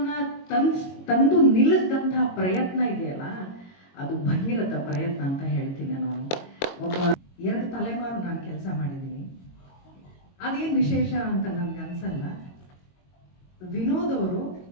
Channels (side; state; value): right; late; 22 ms